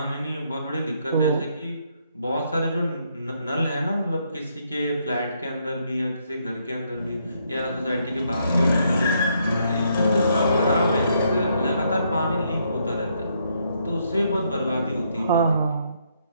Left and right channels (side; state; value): both; inverted; correlation -0.73